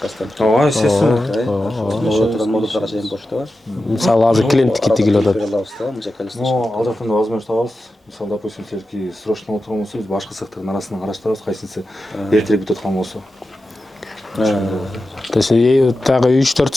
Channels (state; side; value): normal; both; correlation 0.92